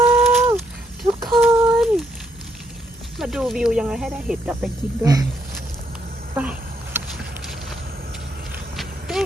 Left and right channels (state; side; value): normal; both; correlation 0.73